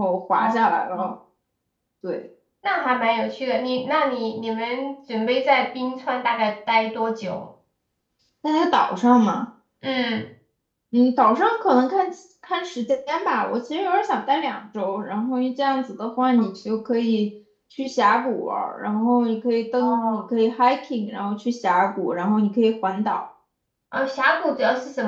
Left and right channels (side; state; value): both; identical; correlation 1.00